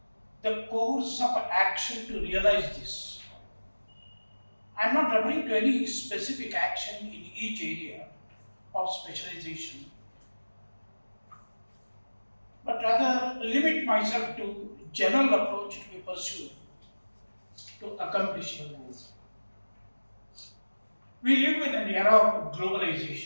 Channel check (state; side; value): inverted; both; correlation -1.00